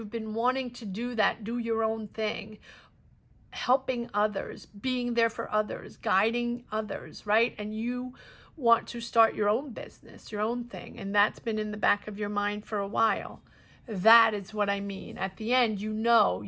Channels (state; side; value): identical; both; correlation 1.00